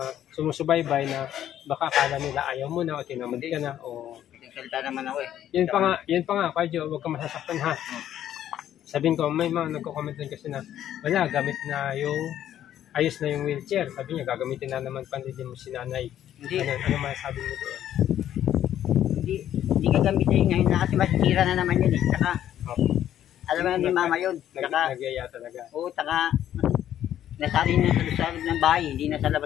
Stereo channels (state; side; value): quieter; right; 11.2 dB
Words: sumusubaybay na baka akala nila ayaw mo na o tinamad ka na o salita naman ako Yun pa nga, Kuya, huwag ka masasaktan ha. Sabihin ko, may mga nagko-comment din kasi na wala, gamit na ayos na yung wheelchair. Sabi niya, gagamitin na naman pandidin mo si nanay. Hindi. Ano masasabi mo doon? Hindi gagamitin ngayon na kasi masisira na naman yun Saka, alam mo ni mama yun. Nagyaya talaga. Oo, saka Nasali na sa loob ng bahay, hindi na sa